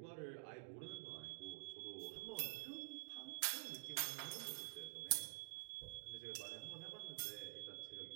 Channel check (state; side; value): silent; left; digital silence